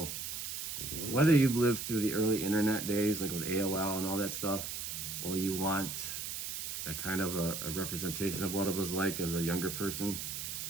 whether you've lived through the early internet days, like with AOL and all that stuff, or you want a kind of a representation of what it was like as a younger person,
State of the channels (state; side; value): noise; right; hiss, 5 dB below the sound